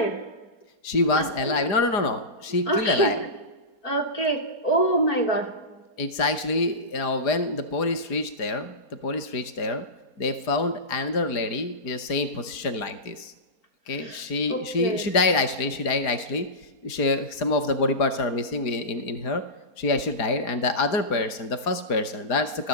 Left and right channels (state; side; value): late; right; 4.4 ms